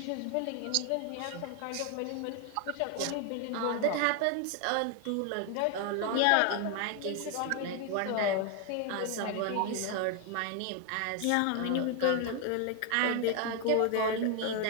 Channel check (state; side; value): different; both; correlation 0.01